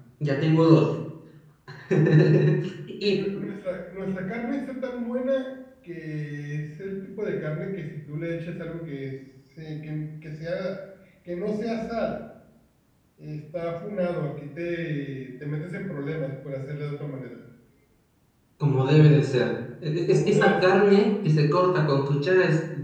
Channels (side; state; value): both; identical; correlation 1.00